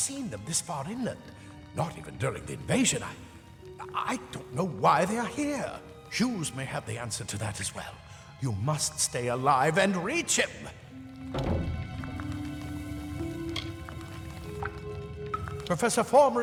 them this far inland, not even during the invasion. I don't know why they are here. Hughes may have the answer to that as well. You must stay alive and reach him. Professor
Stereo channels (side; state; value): both; identical; correlation 1.00